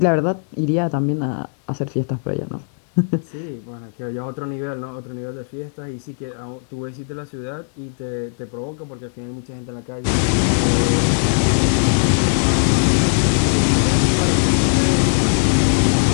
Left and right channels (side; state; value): right; silent; 65 dB below the other